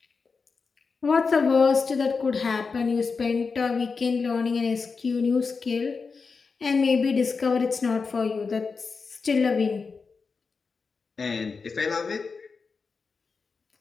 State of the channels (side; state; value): right; quieter; 4.8 dB